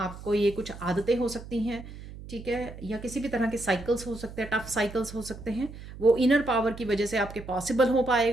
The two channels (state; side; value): noise; right; hum, 14 dB below the sound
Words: ये कुछ आदतें हो सकती हैं, ठीक है, या किसी भी तरह के साइकिल्स हो सकते हैं, टफ साइकिल्स हो सकते हैं, वो इनर पावर की वजह से आपके पॉसिबल हो